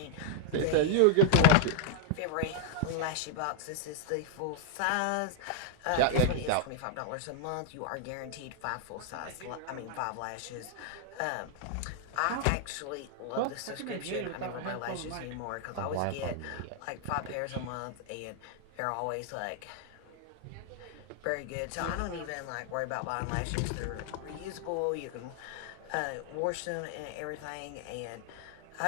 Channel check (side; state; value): both; different; correlation 0.00